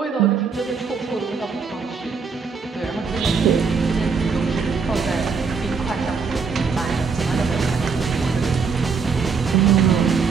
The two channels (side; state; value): left; quieter; 5.3 dB